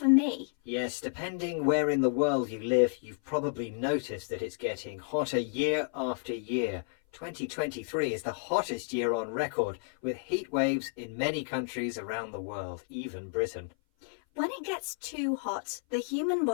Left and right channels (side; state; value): right; silent; 56 dB below the other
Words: me. Yes, depending where in the world you live, you've probably noticed that it's getting hotter year after year. 2023 is the hottest year on record, with heat waves in many countries around the world, even Britain. When it gets too hot, the human